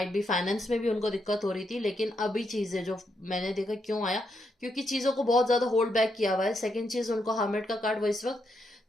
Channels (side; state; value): both; normal; correlation 0.80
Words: भी फाइनेंस में भी उनको दिक्कत हो रही थी, लेकिन अभी चीजें जो मैंने देखा क्यों आया, क्योंकि चीजों को बहुत ज्यादा होल्ड बैक किया हुआ है। सेकंड चीज, उनको हर्मिट का कार्ड, वो इस वक्त